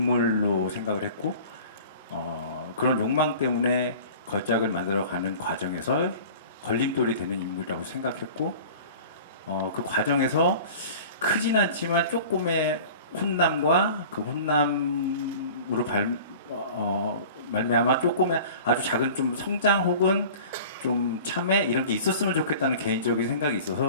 생각을 했고, 그런 욕망 때문에 걸작을 만들어가는 과정에서 걸림돌이 되는 인물이라고 생각했고, 그 과정에서 크진 않지만 조금의 혼남과 그 혼남으로 말미암아 조금의 아주 작은 좀 성장 혹은 좀 참회 이런 게 있었으면 좋겠다는 개인적인 생각이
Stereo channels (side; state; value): both; inverted; correlation -0.42